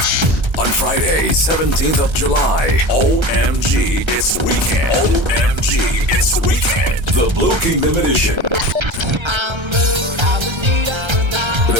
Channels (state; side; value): late; left; 1.3 ms